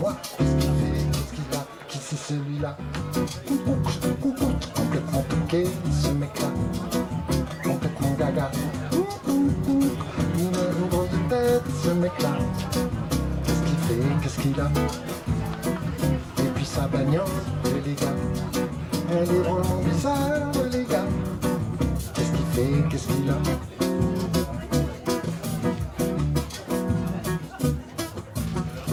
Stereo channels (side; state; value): both; identical; correlation 1.00